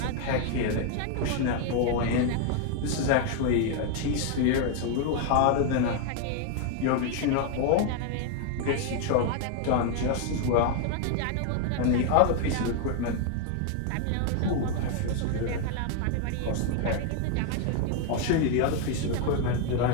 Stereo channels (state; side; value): different; both; correlation 0.00